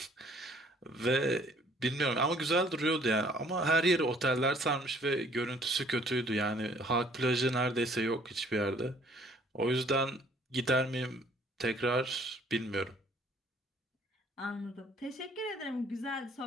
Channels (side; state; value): both; normal; correlation 0.59